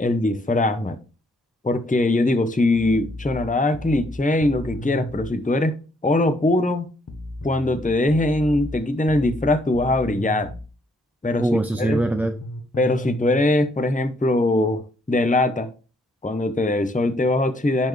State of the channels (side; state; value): both; normal; correlation 0.69